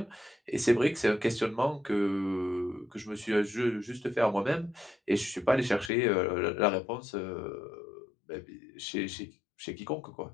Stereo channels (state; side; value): drops out; right; at 5.9 s